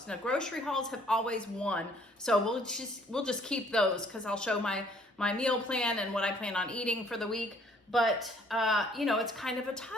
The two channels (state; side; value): normal; both; correlation 0.61